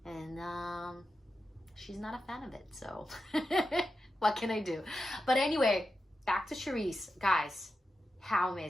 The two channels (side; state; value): both; normal; correlation 0.90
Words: and she's not a fan of it. So what can I do? But anyway, back to Charice. Guys, how